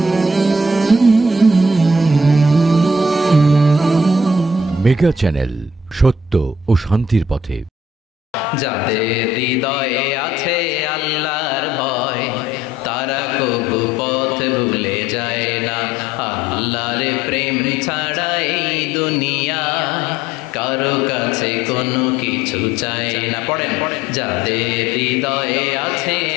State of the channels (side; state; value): both; normal; correlation 0.62